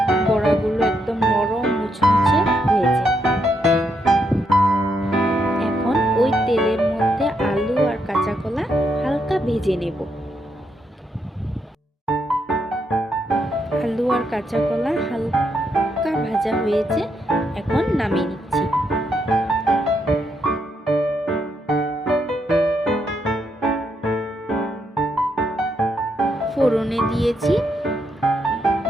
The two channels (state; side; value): normal; both; correlation 0.79